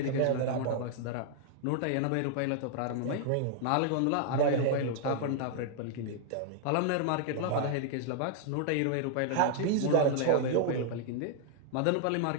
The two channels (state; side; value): different; both; correlation 0.00